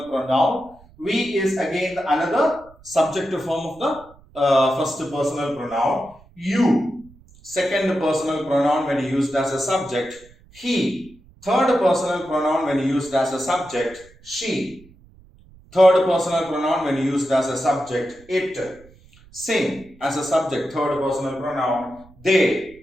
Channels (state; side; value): noise; right; rumble, 26 dB below the sound